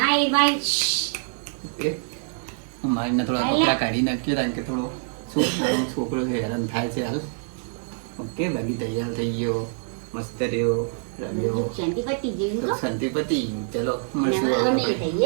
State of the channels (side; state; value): left; silent; 62 dB below the other